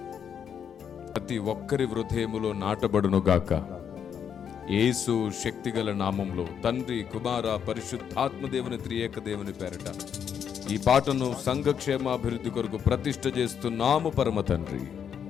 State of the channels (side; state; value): right; quieter; 8.0 dB